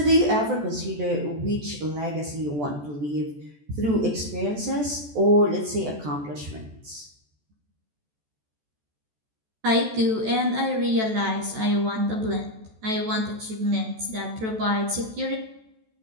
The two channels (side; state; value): left; late; 14 ms